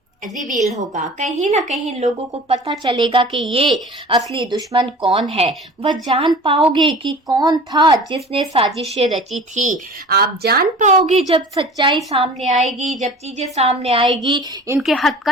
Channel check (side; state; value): both; normal; correlation 0.41